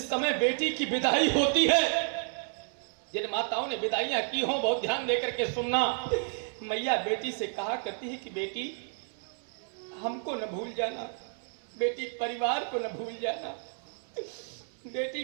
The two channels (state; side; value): silent; left; 57 dB below the other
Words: समय बेटी की विदाई होती है, जिन माताओं ने विदाइयां की हों बहुत ध्यान देकर के सुनना। मैया बेटी से कहा करती है कि बेटी हमको न भूल जाना, बेटी परिवार को न भूल जाना। बेटी